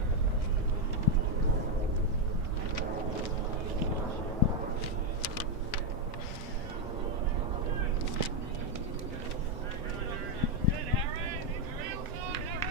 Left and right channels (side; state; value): both; normal; correlation 0.02